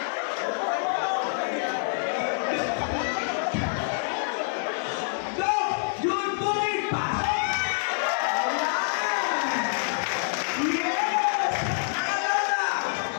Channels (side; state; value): right; silent; digital silence